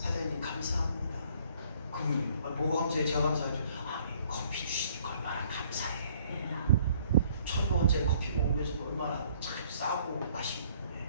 감사합니다. 그러면 뭐가 감사해? 제가 감사하죠. 커피 주시니까 얼마나 감사해. 1,000원짜리 커피 먹으면서 얼마나 참 싸고 맛있고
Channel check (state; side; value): inverted; both; correlation -0.61